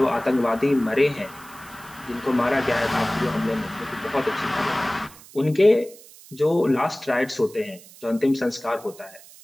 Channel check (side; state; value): right; noise; hiss, 21 dB below the sound